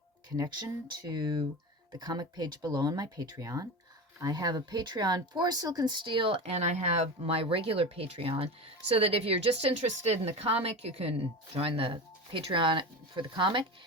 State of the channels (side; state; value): both; normal; correlation 0.26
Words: connection to the comic page below on my Patreon. I have a Patreon for Silk and Steele, and I have my regular Patreon, so that if you're just interested in the comic, you can join the Patreon for the comic.